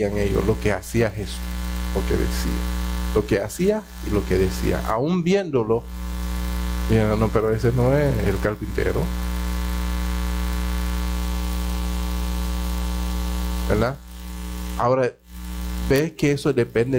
ellos, lo que hacía Jesús, lo que decía, lo que hacía y lo que decía. Aún viéndolo, dijeron, no, pero ese no es el carpintero, ¿verdad? Ahora, ¿ves que eso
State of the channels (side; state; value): both; identical; correlation 1.00